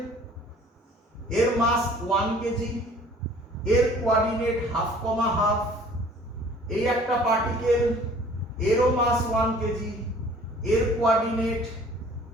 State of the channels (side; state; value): both; normal; correlation 0.51